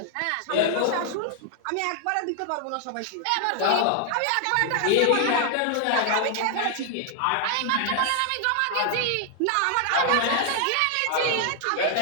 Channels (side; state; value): both; different; correlation 0.00